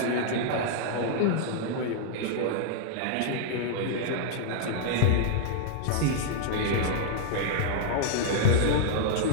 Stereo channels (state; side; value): different; both; correlation -0.01